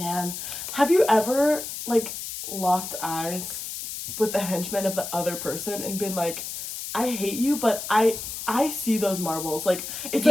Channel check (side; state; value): left; noise; hiss, 7 dB below the sound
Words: have you ever, like, locked eyes with the henchman of the other person and been like, I hate you, but I see those marbles. Like, it's